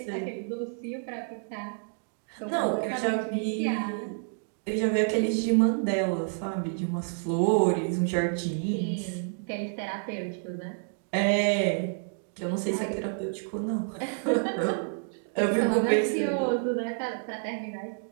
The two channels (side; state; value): left; silent; digital silence